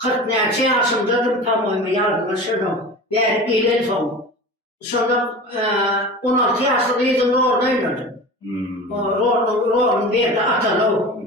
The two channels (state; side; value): normal; both; correlation 0.34